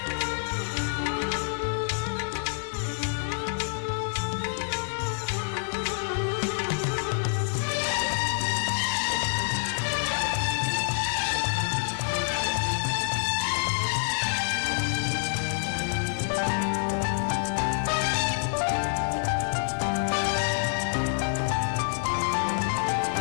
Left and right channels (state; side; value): silent; right; digital silence